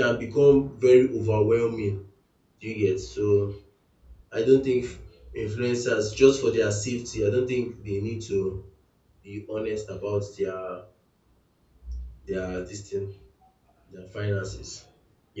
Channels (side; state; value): both; identical; correlation 1.00